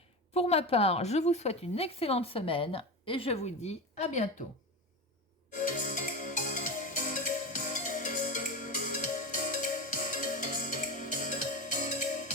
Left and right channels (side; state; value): both; normal; correlation 0.22